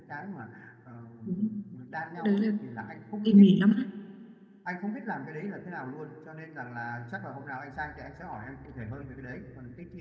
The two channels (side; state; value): both; identical; correlation 1.00